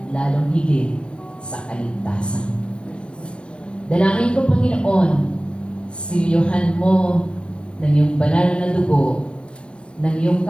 lalong higit sa kaligtasan. Dalangin ko, Panginoon, silyohan mo ng iyong banal na dugo, ng iyong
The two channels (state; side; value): late; right; 0.058 ms